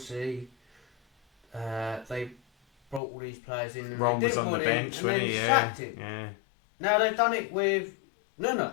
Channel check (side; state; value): right; drops out; at 3.0 s